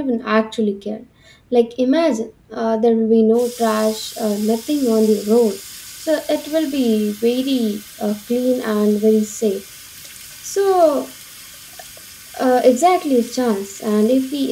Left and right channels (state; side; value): identical; both; correlation 1.00